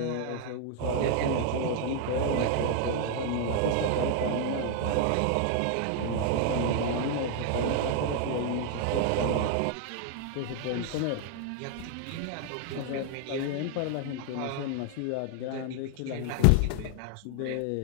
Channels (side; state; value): both; different; correlation 0.00